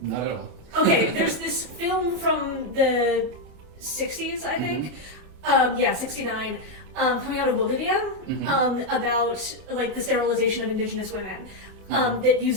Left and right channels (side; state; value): left; late; 26 ms